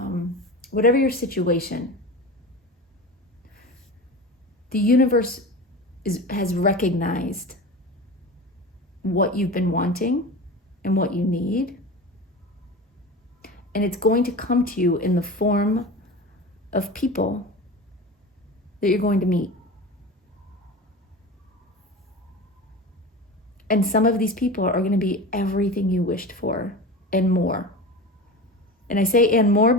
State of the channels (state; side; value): normal; both; correlation 0.30